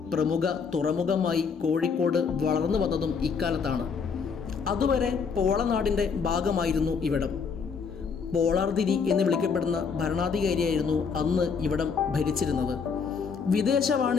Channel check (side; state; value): right; quieter; 5.8 dB